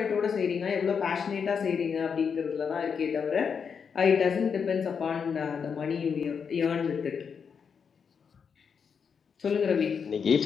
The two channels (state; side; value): quieter; right; 6.4 dB